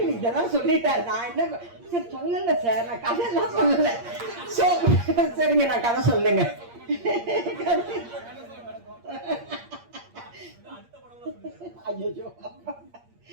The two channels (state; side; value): late; left; 8.6 ms